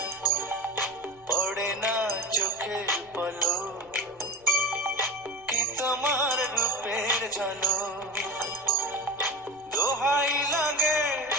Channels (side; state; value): left; noise; rumble, 30 dB below the sound